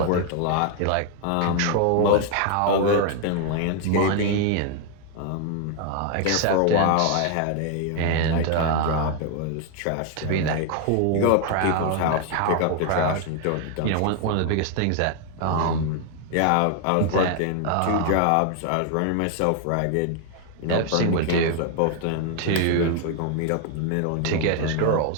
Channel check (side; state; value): both; different; correlation 0.00